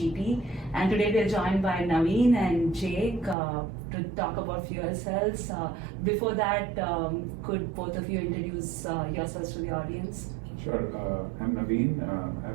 and today we are joined by Navin and Jake to talk about fuel cells. Before that, could both of you introduce yourselves to the audience? Sure. I'm Navin.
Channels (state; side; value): drops out; left; at 3.4 s